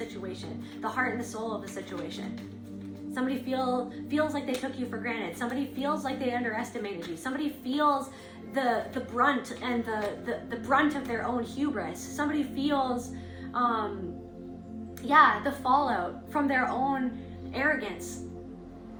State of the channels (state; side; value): identical; both; correlation 1.00